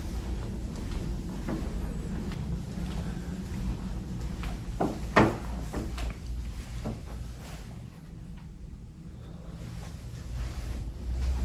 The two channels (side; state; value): both; identical; correlation 1.00